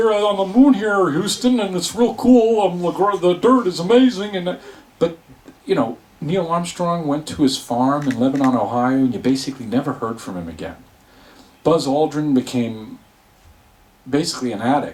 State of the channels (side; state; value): both; identical; correlation 1.00